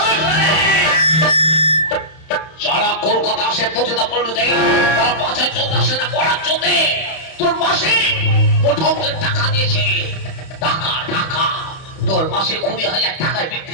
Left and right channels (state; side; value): late; right; 31 ms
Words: যারা কলকাতা আসে প্রতিটা পল্লীতে তারা মাছের জন্য আসে না পড়ার জন্য। তোর মাসে মোটামুটি টাকা দিয়েছে, টাকা টাকা তোর মাসে 20,000 টাকায়